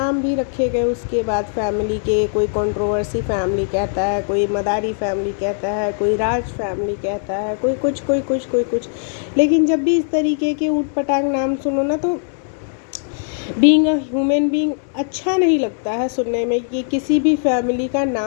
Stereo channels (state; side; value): silent; right; digital silence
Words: भी रखे गए उसके बाद फैमिली के। कोई कंट्रोवर्सी फैमिली कहता है, कोई मदारी फैमिली कहता है, कोई राज फैमिली कहता है, कोई कुछ। लेकिन जब भी इस तरीके के ऊट पटांग नाम सुनो ना, तो बीइंग अ ह्यूमन बीइंग अच्छा नहीं लगता है सुनने में कि किसी भी फैमिली का